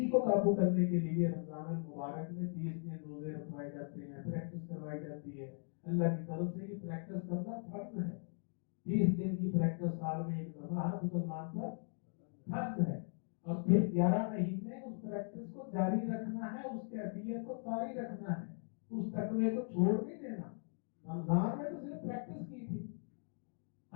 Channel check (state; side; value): silent; right; 52 dB below the other